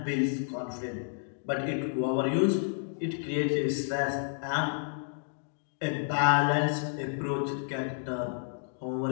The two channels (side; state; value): right; silent; digital silence